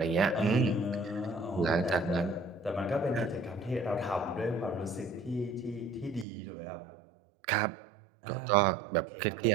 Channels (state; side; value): drops out; left; at 6.2 s